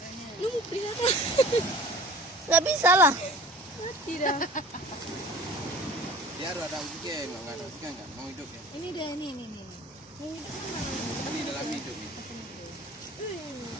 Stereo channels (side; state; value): both; normal; correlation 0.46